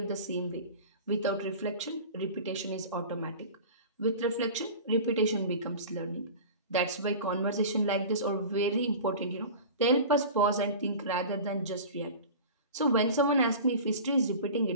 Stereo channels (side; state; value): both; inverted; correlation -0.36